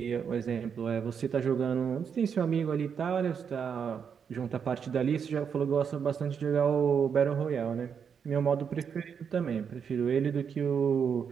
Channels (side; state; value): left; quieter; 7.0 dB